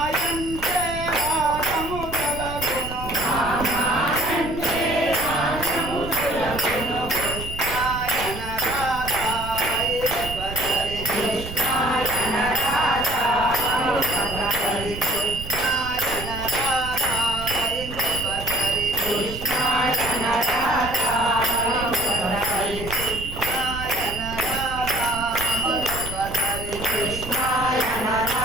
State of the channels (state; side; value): noise; right; rumble, 10 dB below the sound